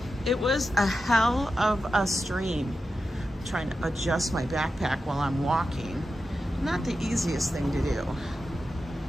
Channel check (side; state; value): both; normal; correlation 0.90